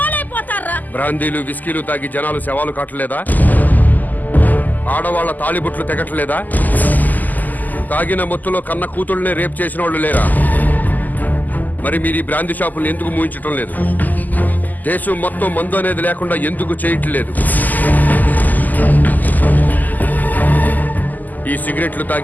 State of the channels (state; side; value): late; right; 0.083 ms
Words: బ్రాందీలు విస్కీలు తాగి జనాలు శవాలు కాటలేదా? ఆడవాళ్ల తాళిబుట్లు తెగట్లేదా? తాగిన మొత్తులో కన్న కూతుళ్ళనే రేప్ చేసిన వాళ్ళు లేరా? మరి మీరు ఈ బ్రాందీ షాపులు ఎందుకు మూయించటం లేదు? దేశం మొత్తం మందు అనేది లేకుండా ఎందుకు చేయట్లేదు? ఈ సిగరెట్లు